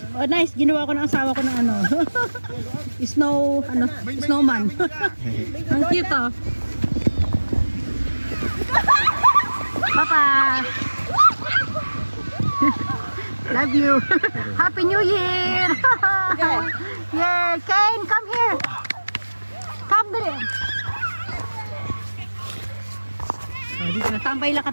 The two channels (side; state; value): both; inverted; correlation -1.00